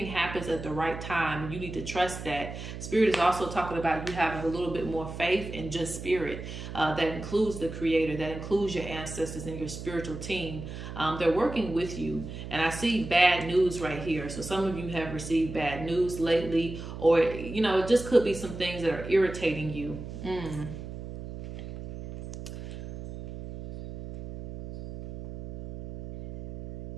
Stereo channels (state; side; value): noise; right; hum, 9 dB below the sound